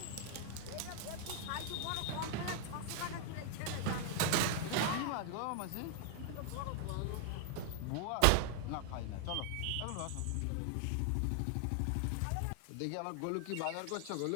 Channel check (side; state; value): both; different; correlation 0.00